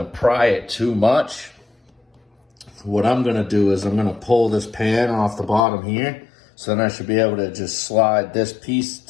pry it too much. What I'm gonna do is I'm gonna pull this pan off the bottom here, so then I should be able to just slide this piece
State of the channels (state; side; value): drops out; right; at 5.6 s